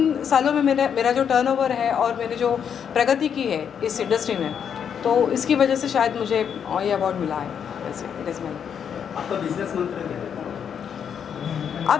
सालों में मेरा जो टर्नओवर है और मैंने जो प्रगति की है इस इंडस्ट्री में, तो इसकी वजह से शायद मुझे ये अवार्ड मिला है। वैसे इट इज़ माय। आपका बिजनेस मंत्र क्या है?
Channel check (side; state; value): right; quieter; 7.8 dB